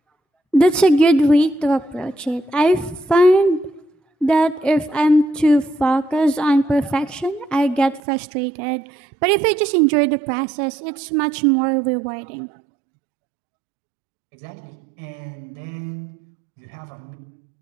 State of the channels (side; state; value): left; drops out; at 8.0 s